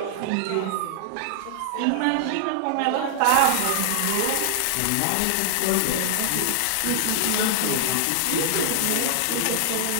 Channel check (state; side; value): different; both; correlation -0.01